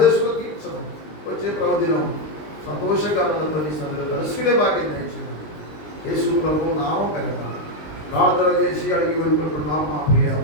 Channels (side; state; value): right; late; 19 ms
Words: తీర్చడం. వచ్చే ప్రవదినం సంతోషకరణతో నీ సన్నిధిలో కలుసుకునే భాగ్యం దయచేయండి. యేసు ప్రభు నామం పెరగాలి. ప్రార్థన చేసి అడిగి వెళ్ళుకుంటున్నాం మా ప్రియ